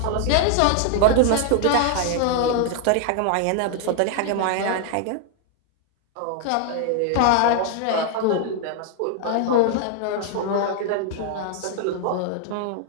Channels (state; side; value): different; both; correlation 0.00